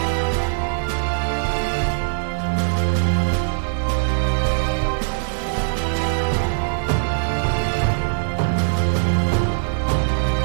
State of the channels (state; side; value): silent; left; digital silence